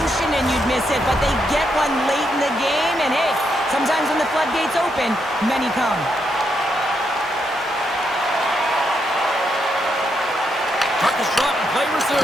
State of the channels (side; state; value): both; normal; correlation 0.80